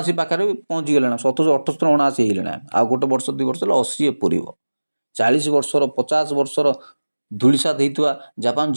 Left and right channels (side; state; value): both; inverted; correlation -1.00